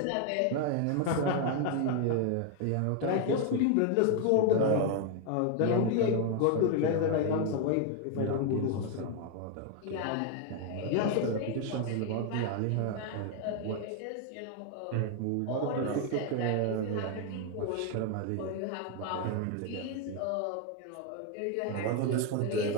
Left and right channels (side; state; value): both; different; correlation 0.01